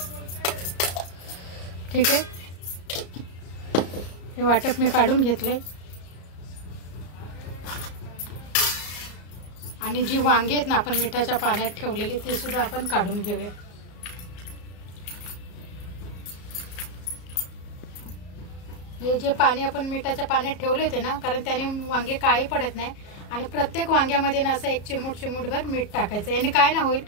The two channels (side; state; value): right; late; 34 ms